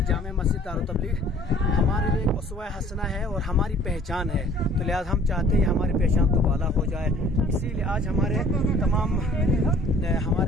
जामे मस्जिद दारुल तबलीग हमारे लिए एक उसवा हसना है और हमारी पहचान है, तो लिहाजा हम चाहते हैं हमारी पहचान दोबारा हो जाए। इसीलिए आज हमारे तमाम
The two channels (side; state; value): both; normal; correlation 0.54